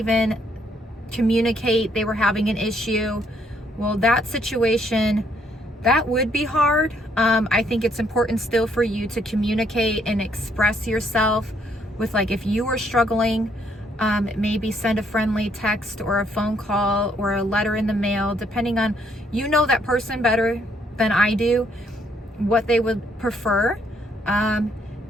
communicate they were having an issue, Well, that situation, that would be hard. I think it's important still for you to communicate and express yourself with, like, if you were struggling, maybe send a friendly text or a phone call or a letter in the mail, depending on, you know that person better than I do, what they would prefer.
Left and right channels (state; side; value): normal; both; correlation 0.70